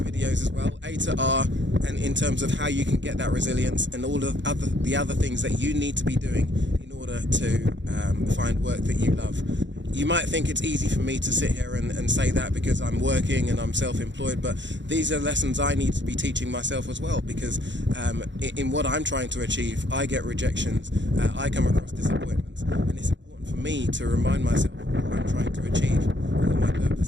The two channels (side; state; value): left; late; 0.53 ms